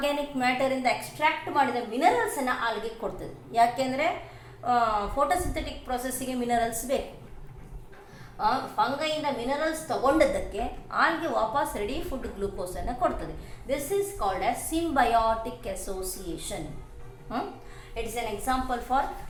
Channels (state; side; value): identical; both; correlation 1.00